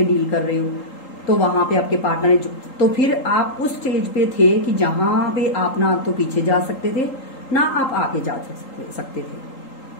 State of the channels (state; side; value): late; right; 3.8 ms